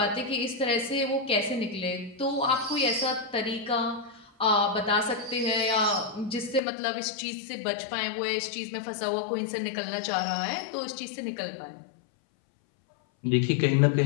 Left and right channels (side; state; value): right; drops out; at 6.6 s